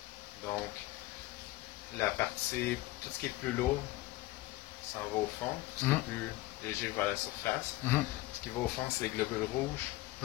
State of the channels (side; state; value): right; quieter; 17.6 dB